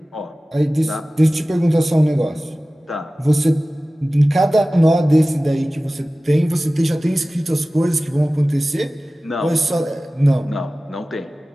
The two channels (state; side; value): normal; both; correlation 0.97